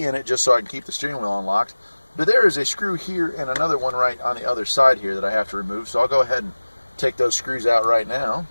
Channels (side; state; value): both; inverted; correlation -1.00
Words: in it just so I can keep the steering wheel unlocked. But there is a screw here and another one right on the other side here that I have to remove. So I'll go ahead and take those screws out right now.